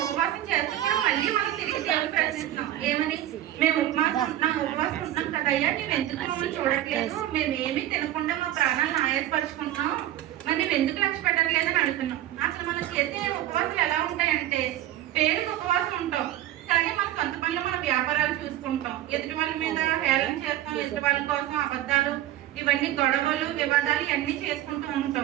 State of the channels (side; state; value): left; quieter; 13.2 dB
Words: ఉపవాసం చేస్తే కూడా మళ్ళీ మనం తిరిగి దేవుడు ప్రశ్నిస్తున్నాం. ఏమని? మేము ఉపవాసం ఉంటున్నాం కదయ్యా, నువ్వు ఎందుకు మమ్మల్ని చూడట్లేదు, మేము ఏమీ తినకుండా మా ప్రాణాలను ఆయాసపరుచుకుంటున్నాం, మరి నువ్వు ఎందుకు లక్ష్య పెట్టట్లేదని అడుగుతున్నాం. అసలు మనం చేసే ఉపవాసాలు ఎలా ఉంటాయంటే, పేరుకి ఉపవాసం ఉంటాం కానీ మన సొంత పనులు మన వ్యాపారాలు చూసుకుంటాం, ఎదుటి వాళ్ళ మీద హేళన చేస్తాం, ఎదుటి వాళ్ళ కోసం అబద్ధాలు, ఇవన్నీ గొడవలు, వివాదాలు ఇవన్నీ చేసుకుంటూ